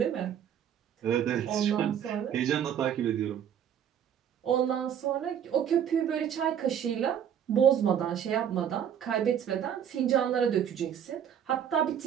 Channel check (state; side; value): quieter; left; 9.0 dB